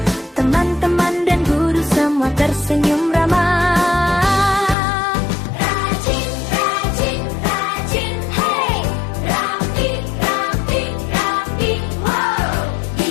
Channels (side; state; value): right; drops out; at 4.8 s